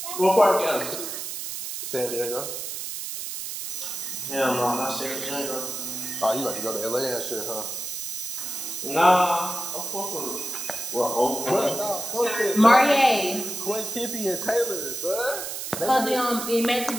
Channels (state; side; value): noise; right; hiss, 6 dB below the sound